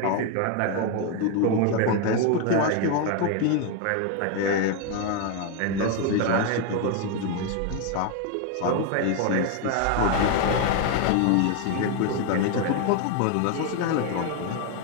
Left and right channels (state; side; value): different; both; correlation 0.01